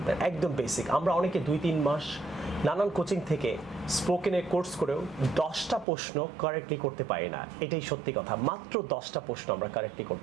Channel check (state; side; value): drops out; left; at 5.9 s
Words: একদম বেসিক। আমরা অনেকে 2-3 মাস নানান কোচিং থেকে স্পোকেনের কোর্স করেও 10টা প্রশ্ন কারেক্টলি করতে পারি না। এটাই সত্যি কথা, মাত্র 10টা প্রশ্ন আমরা কারেক্টলি